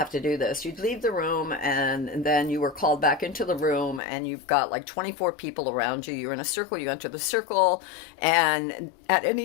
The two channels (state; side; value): drops out; right; at 4.0 s